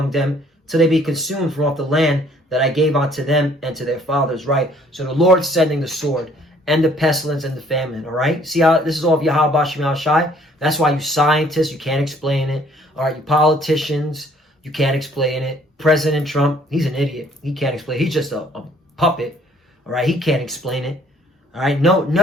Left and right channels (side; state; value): both; normal; correlation 0.60